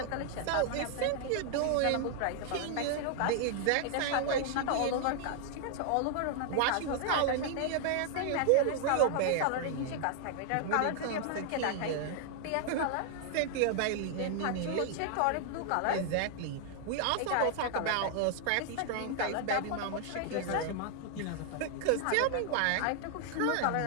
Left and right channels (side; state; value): both; different; correlation 0.00